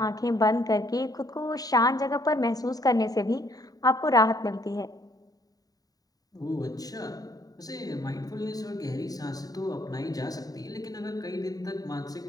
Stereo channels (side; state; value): right; late; 0.18 ms